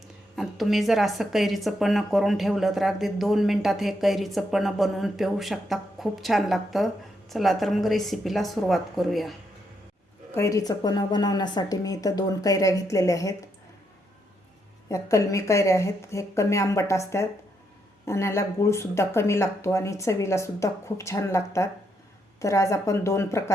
आणि तुम्ही जर असं कैरीचं पन्हं करून ठेवलं तर अगदी 2 मिनिटात हे कैरीचं पन्हं बनवून पिऊ शकता. खूप छान लागतं. चला तर मग रेसिपीला सुरुवात करूया. कैरीचं पन्हं बनवण्यासाठी मी इथं 2 कैऱ्या घेतलेल्या आहेत. या कलमी कैऱ्या आहेत. हे कमी आंबट असतात आणि याला गूळसुद्धा कमी लागतो आणि चवीलासुद्धा खूप छान लागतात. तर आज आपण 2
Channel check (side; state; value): both; normal; correlation 0.78